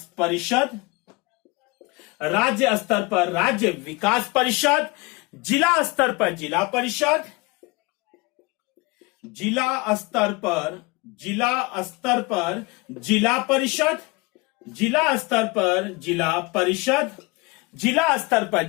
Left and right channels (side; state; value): right; quieter; 25.5 dB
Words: परिषद, राज्य स्तर पर राज्य विकास परिषद, जिला स्तर पर जिला परिषद, जिला स्तर पर जिला परिषद, जिला स्तर पर जिला परिषद, जिला स्तर पर